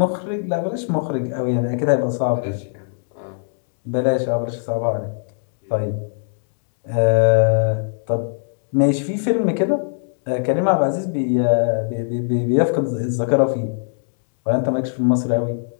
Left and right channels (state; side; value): silent; right; digital silence